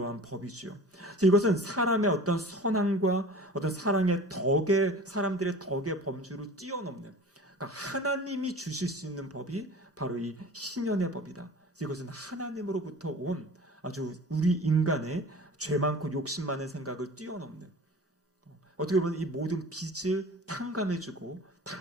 법이지요. 이것은 사람의 어떤 선함과 어떤 사랑의 덕에, 사람들의 덕의 범주를 뛰어넘는, 그러니까 하나님이 주실 수 있는 법이 바로 이 신년의 법이다. 이것은 하나님으로부터 온 아주 우리 인간의 죄 많고 욕심 많은 생각을 뛰어넘는, 어떻게 보면 이 모든 빚을 탕감해주고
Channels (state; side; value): normal; both; correlation 0.40